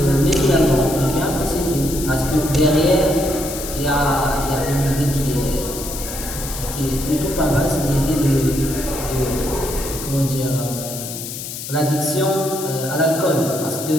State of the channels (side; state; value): left; noise; hiss, 8 dB below the sound